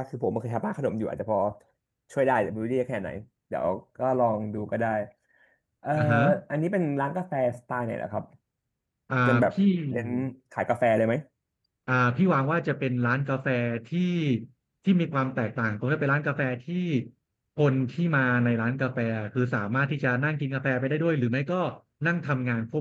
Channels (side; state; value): both; identical; correlation 1.00